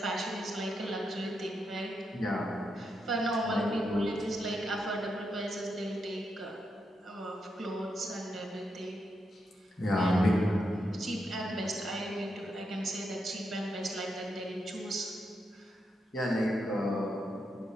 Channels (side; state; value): both; normal; correlation 0.83